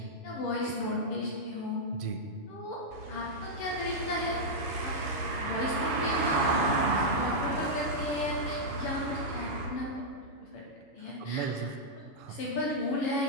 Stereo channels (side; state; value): right; late; 7.1 ms